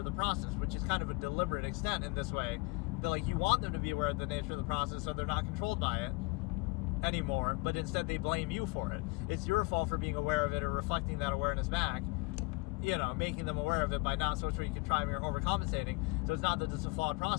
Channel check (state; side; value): quieter; right; 26.6 dB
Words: the process, which is kind of a deliberate extent in this way. That, like, you want them to be aware of the nature of the process so they're not controlled by it anymore, but instead they blame you for it. It's your fault for being aware of it or reflecting that awareness back, you know, making them aware of it by not socially contriving or overcompensating. So it's not that it's a flawed